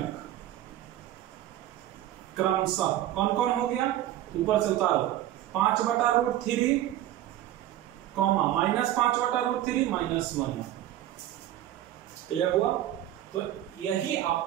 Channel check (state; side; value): quieter; left; 13.1 dB